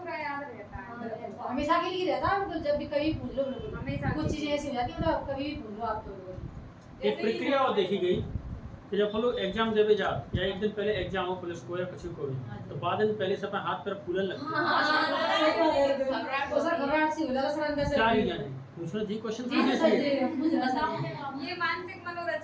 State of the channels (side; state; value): both; identical; correlation 1.00